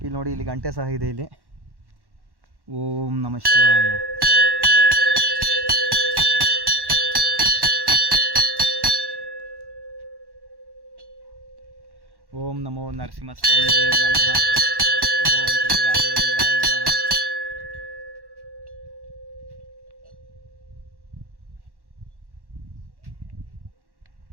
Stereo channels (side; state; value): left; late; 1.1 ms